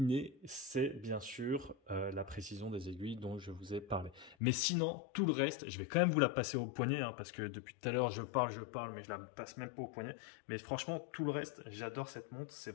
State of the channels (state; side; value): drops out; right; at 4.4 s